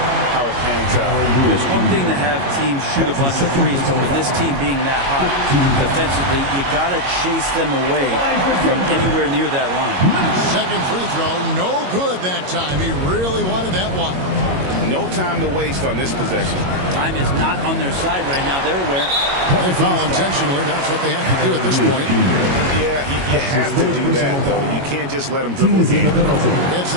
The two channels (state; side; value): late; left; 22 ms